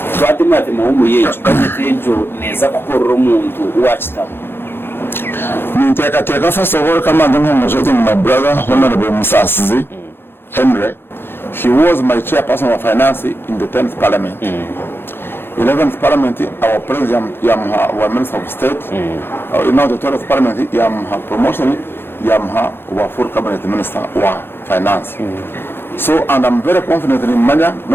Twatimate muhumuye cyukatejo neza kukorora umuntu wachitamo Ninteka first of all kama ndumujote my brother Honorable Musasizi Henry. He was my chairperson of finance in the 10th parliament. 11th parliament our president yamuha wa minister of state now the 12th parliament yamuha promotion yamuha wa full cabinet minister wa finance so and I'm very confident in manya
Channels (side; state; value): right; late; 0.11 ms